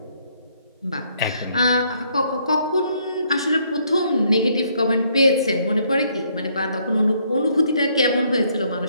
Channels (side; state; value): both; inverted; correlation -0.69